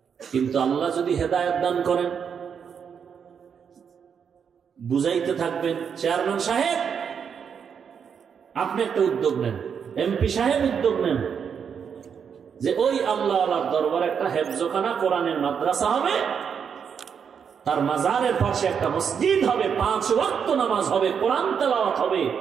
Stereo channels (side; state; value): left; quieter; 7.1 dB